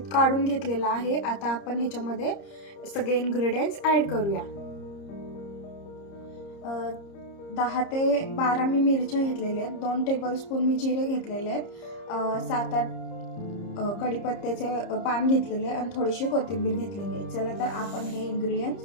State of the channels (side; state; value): right; late; 30 ms